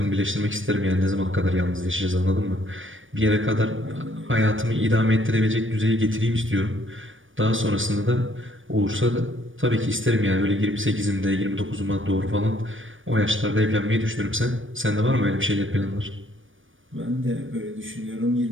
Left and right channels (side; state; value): left; late; 0.57 ms